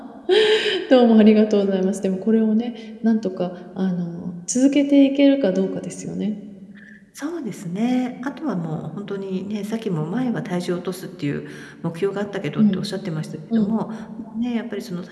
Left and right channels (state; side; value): identical; both; correlation 1.00